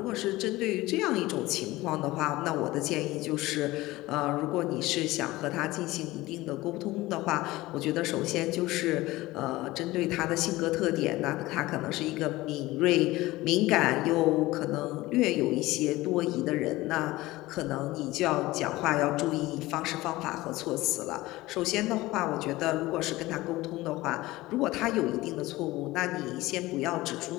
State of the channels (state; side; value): quieter; right; 18.7 dB